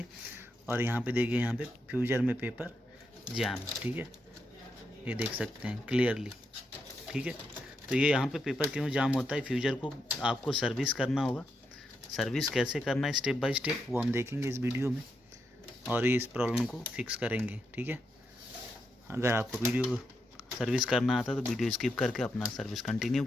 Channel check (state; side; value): normal; both; correlation 0.83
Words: और यहाँ पे देखिए, यहाँ पे फ्यूजर में पेपर जैम, ठीक है, ये देख सकते हैं क्लियरली, ठीक है। तो ये यहाँ पे पेपर क्यों जाम होता है, फ्यूजर को आपको सर्विस करना होगा। सर्विस कैसे करना है स्टेप बाय स्टेप, वो हम देखेंगे इस वीडियो में और ये इस प्रॉब्लम को फिक्स करेंगे, ठीक है। अगर आपको वीडियो सर्विस करना आता तो वीडियो स्किप करके अपना सर्विस कंटिन्यू